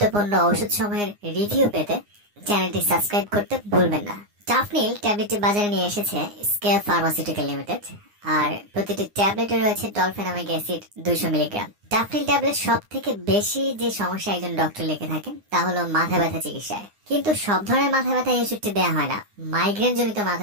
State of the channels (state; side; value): late; left; 9.7 ms